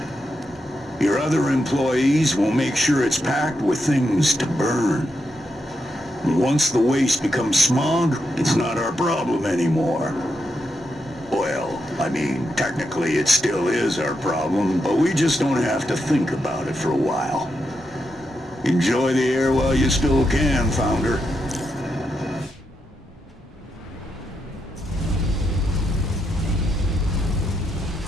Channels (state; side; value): normal; both; correlation 0.84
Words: Your other employees will make sure it's packed with things to burn. Once the waste becomes smog, it's not our problem anymore. Well, I mean, technically it still is our problem, but we just don't have to think about it for a while. Enjoy the air while you still can, Founder.